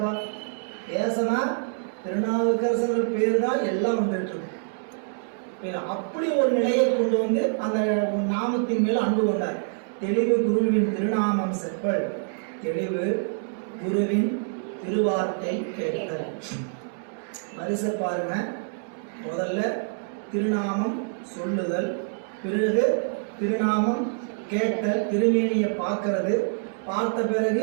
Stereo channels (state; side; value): silent; left; digital silence